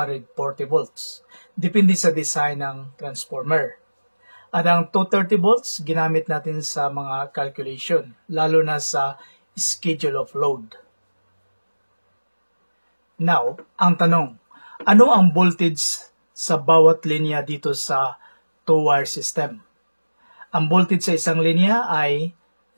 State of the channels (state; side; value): inverted; both; correlation -1.00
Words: volts. Depende sa design ng transformer. At ang 230 volts, ginamit natin sa mga calculation, lalo na sa schedule of load. Now, ang tanong, ano ang voltage sa bawat linya dito sa two-wire system? Ang voltage sa isang linya ay